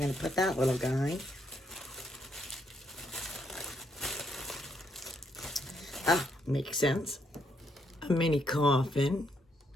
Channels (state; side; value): normal; both; correlation 0.75